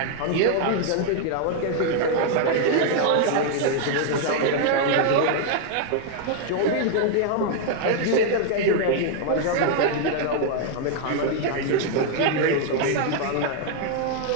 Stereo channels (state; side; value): different; both; correlation 0.00